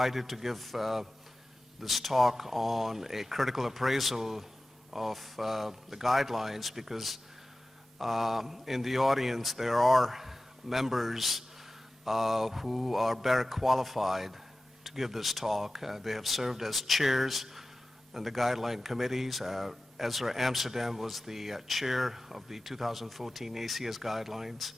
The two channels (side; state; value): both; normal; correlation 0.96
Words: to give this talk on a critical appraisal of the guidelines because in the audience there are members who are better qualified to give this talk. They have served as chairs in the guideline committees. Ezra Amsterdam was the chair of the 2014 ACS guidelines.